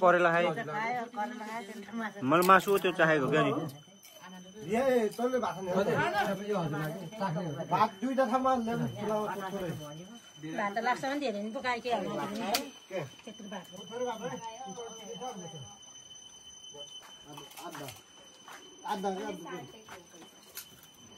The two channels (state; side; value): identical; both; correlation 1.00